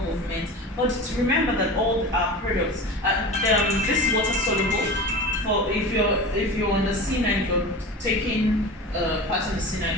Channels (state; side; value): normal; both; correlation 0.32